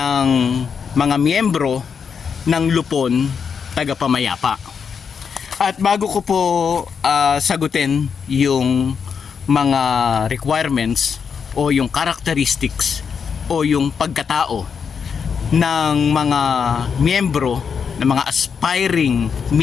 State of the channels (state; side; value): quieter; right; 6.5 dB